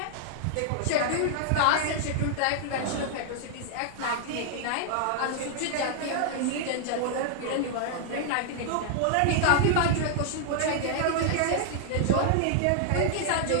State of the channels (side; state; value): both; different; correlation 0.00